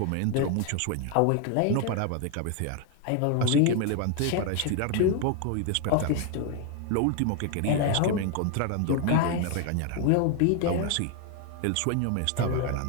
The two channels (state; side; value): different; both; correlation 0.01